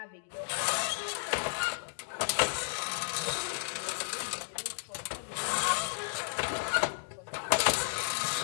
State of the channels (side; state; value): right; silent; digital silence